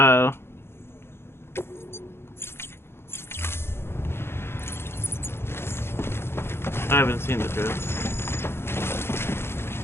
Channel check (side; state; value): right; late; 0.12 ms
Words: I haven't seen the dress.